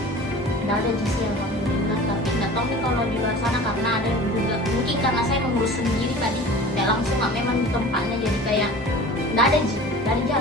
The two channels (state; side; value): normal; both; correlation 0.40